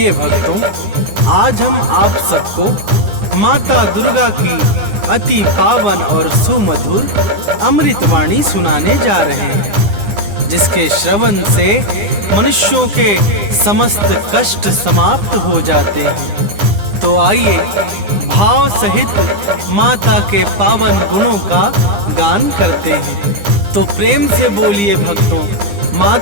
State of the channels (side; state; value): left; late; 9.8 ms